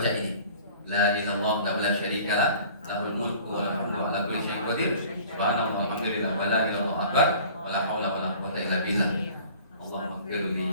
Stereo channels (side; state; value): both; inverted; correlation -0.47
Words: ini, la ilaha illallah la syarikalah, lahul mulku wa lahul hamdu ala kulli syai'in qadir. Subhanallah walhamdulillah wa la ilaha illallah akbar wa la haula wa la quwwata illa billah. Allahumma ighfirli,